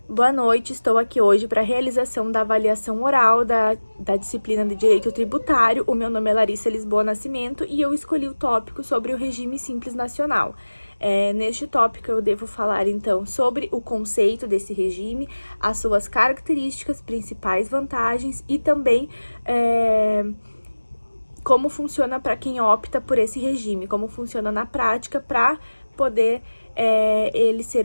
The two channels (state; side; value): inverted; both; correlation -1.00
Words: Boa noite, estou aqui hoje para a realização da avaliação oral da disciplina de Direito Tributário. O meu nome é Larissa Lisboa Nascimento e eu escolhi o tópico sobre o regime simples nacional. Neste tópico eu devo falar então sobre o conceito desse regime, as suas características, principais vantagens e também como funciona para quem opta por esse regime, como funciona na prática para poder ele